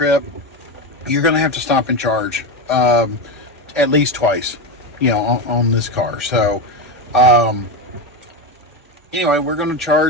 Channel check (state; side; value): normal; both; correlation 0.15